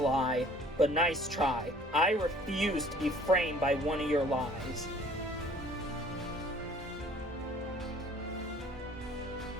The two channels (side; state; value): both; normal; correlation 0.53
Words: but nice try. I refuse to be framed by one of your lies.